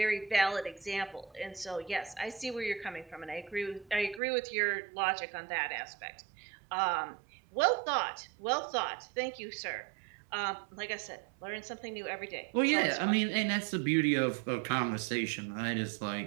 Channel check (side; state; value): left; drops out; at 4.2 s